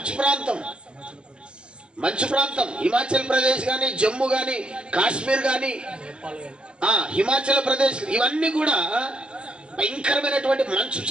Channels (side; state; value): left; late; 0.050 ms